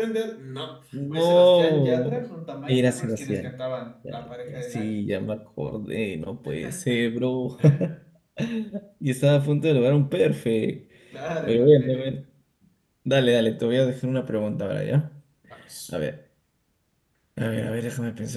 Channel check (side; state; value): both; identical; correlation 1.00